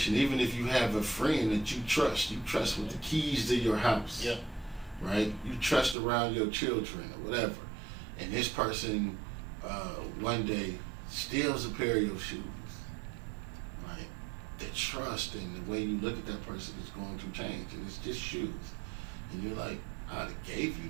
Even if you have a friend that you trust with the keys to your house, right? You trust around your children or whatever, and this person one day steals a pair of your shoes, right? The trust and the way you look at that person is going to change, and it's just shoes, and you're like, I gave you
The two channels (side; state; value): left; drops out; at 6.0 s